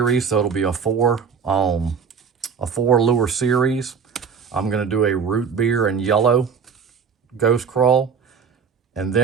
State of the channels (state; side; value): quieter; left; 6.3 dB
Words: so it'll be a four lure series. I'm going to do a root beer and yellow ghost crawl, and